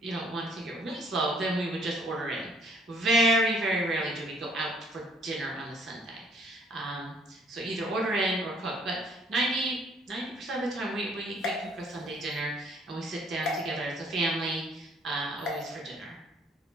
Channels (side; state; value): both; normal; correlation 0.62